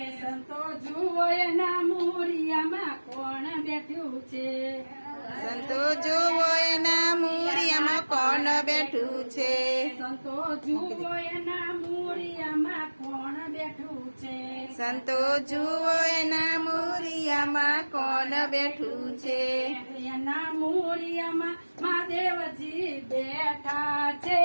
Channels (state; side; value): inverted; both; correlation -1.00